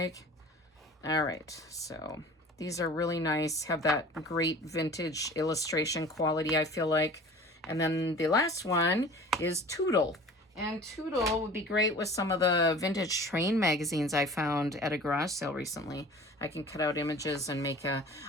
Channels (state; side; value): normal; both; correlation 0.43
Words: All right, so these are really nice, have that great vintage illustration quality, I feel like. And then the last one is Toodle. And Toodle would be great with some of the vintage train magazines I found at a garage sale recently. I can cut out images and make